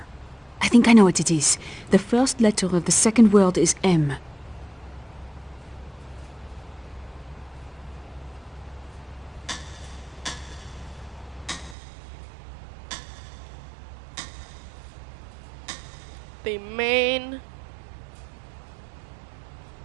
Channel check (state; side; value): drops out; left; at 11.8 s